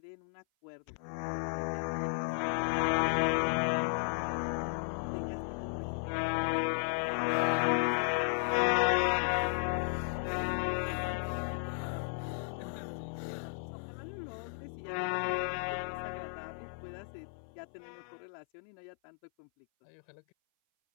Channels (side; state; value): right; silent; 55 dB below the other